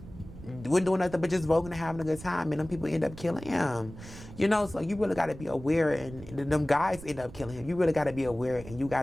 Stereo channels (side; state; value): right; noise; rumble, 15 dB below the sound